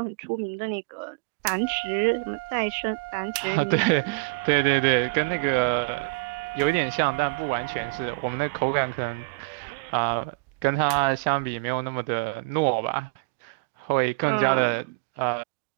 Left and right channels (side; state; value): left; quieter; 27.1 dB